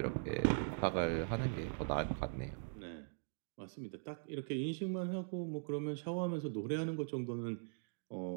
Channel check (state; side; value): silent; left; digital silence